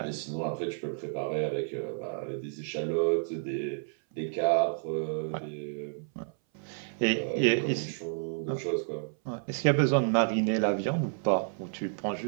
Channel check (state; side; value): silent; left; 56 dB below the other